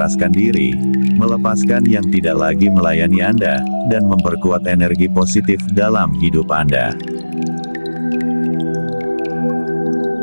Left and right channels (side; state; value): both; inverted; correlation -1.00